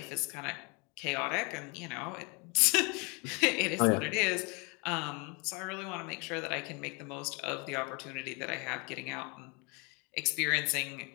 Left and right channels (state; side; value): quieter; right; 30.7 dB